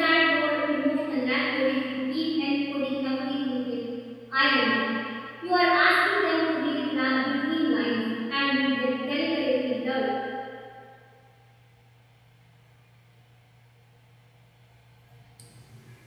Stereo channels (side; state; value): both; identical; correlation 1.00